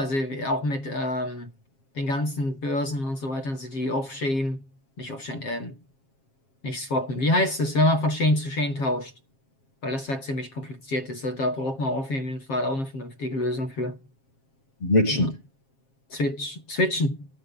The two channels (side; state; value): right; late; 7.4 ms